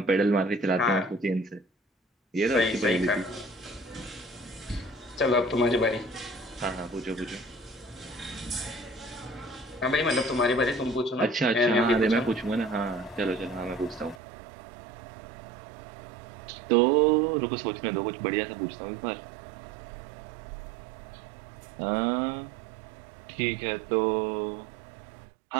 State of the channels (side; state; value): left; drops out; at 14.2 s